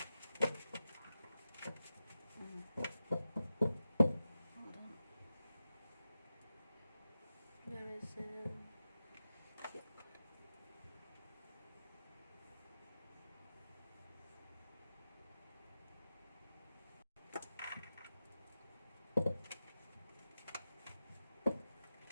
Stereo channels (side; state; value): both; inverted; correlation -0.93